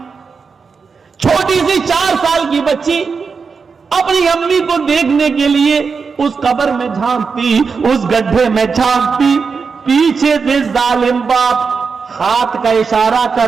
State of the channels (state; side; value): quieter; left; 5.3 dB